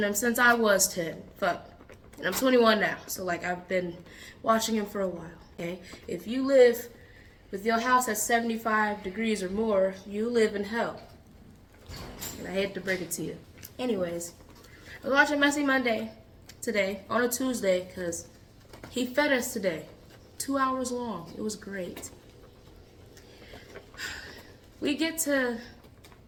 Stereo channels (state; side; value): identical; both; correlation 1.00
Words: him since I was 10. Fuck. And I'm 21 now. So like I've been watching him for a while. Okay? If you live with your house at 75 degrees or more, you live in hell. And I hate to break it to you. Anyways, I was watching Messy Monday today on a Tuesday because he fed us today. 2 hours long. It was great. We get to